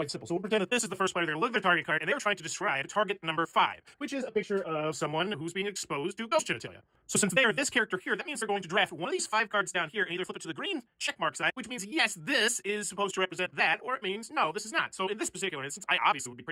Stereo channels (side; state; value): both; identical; correlation 1.00